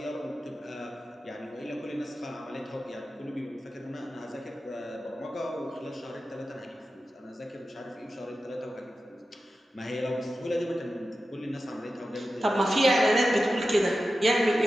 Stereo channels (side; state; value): both; normal; correlation 0.93